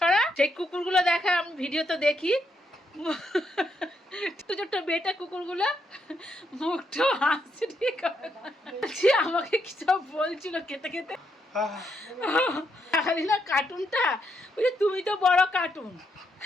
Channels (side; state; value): both; normal; correlation 0.78